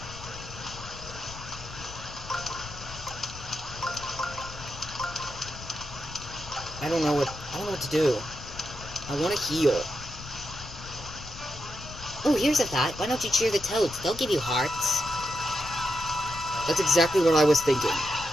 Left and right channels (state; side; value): noise; left; rumble, 13 dB below the sound